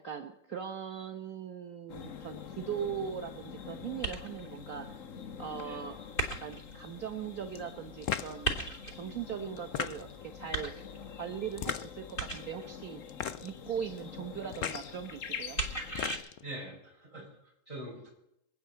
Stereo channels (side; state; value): right; late; 3.8 ms